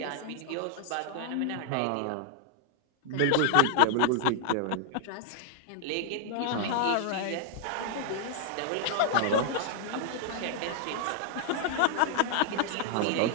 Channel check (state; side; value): different; both; correlation -0.01